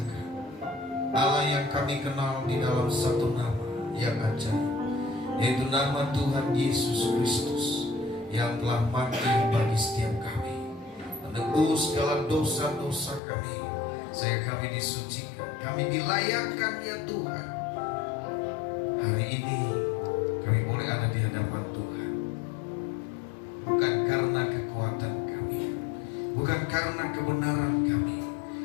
Allah yang kami kenal di dalam satu nama yang ajaib, yaitu nama Tuhan Yesus Kristus yang telah mati bagi setiap kami, menebus segala dosa-dosa kami, sehingga kami disucikan, kami dilayakkan ya Tuhan. Hari ini kami boleh ada di hadapan Tuhan, bukan karena kekuatan kami, bukan karena kebenaran kami,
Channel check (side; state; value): right; drops out; at 13.2 s